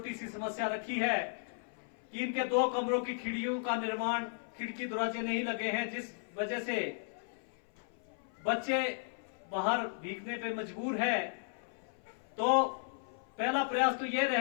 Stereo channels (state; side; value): silent; right; 54 dB below the other